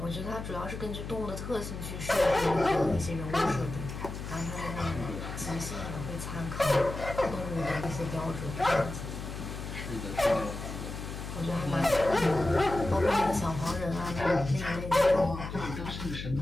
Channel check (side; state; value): left; noise; hum, 8 dB below the sound